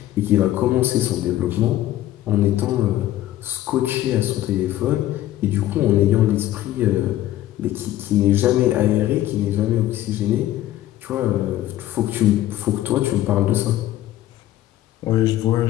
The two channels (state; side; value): quieter; right; 14.0 dB